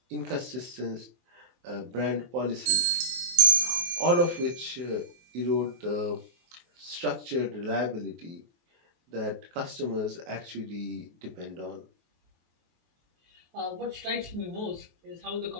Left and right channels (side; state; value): left; late; 23 ms